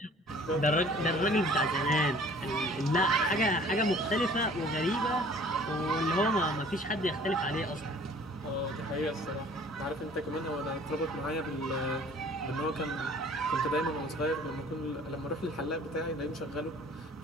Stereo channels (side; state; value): both; normal; correlation 0.51